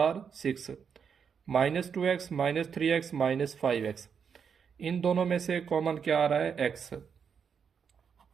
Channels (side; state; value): left; quieter; 6.8 dB